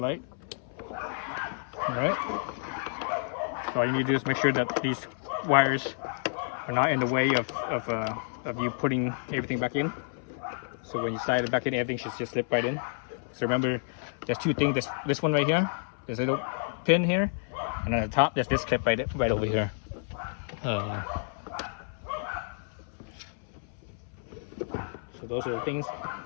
Alright. So all you need to do is make sure that these wires are not in the way of you putting everything back in. So when you slide it back in, everything should just slip right in. So remember, there's two things. This one right here, there's a little pin here, and on the top, there's this clip right over here. So those are the things to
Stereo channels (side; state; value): right; silent; 58 dB below the other